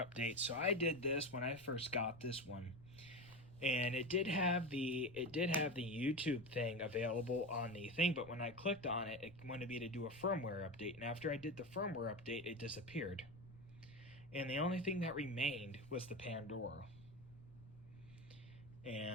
update. So I did this when I first got this one, and it did have the YouTube thing available on the thing, but when I clicked on it, it wanted me to do a firmware update, and after I did the firmware update, it disappeared. And the only thing that remained was the Pandora.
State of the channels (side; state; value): left; noise; rumble, 22 dB below the sound